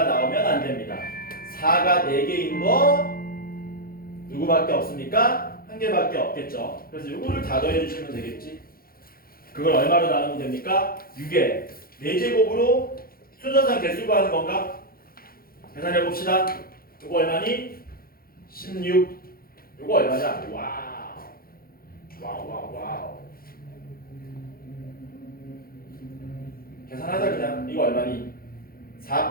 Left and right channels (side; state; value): right; late; 0.43 ms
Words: 나오면 안 됩니다. 4가 4개인 거 누구밖에 없습니까? 한 개밖에 없겠죠. 그래서 이거를 다 더해주시면 되겠지. 그걸 얼마로 나누면 됩니까? 6에 4제곱으로 순서상 개수 구하는 건가? 계산해 봅시다. 이거 얼마니? 16. 이거 얼마냐? 와우. 와우. 계산하자 그냥. 이거 얼마니?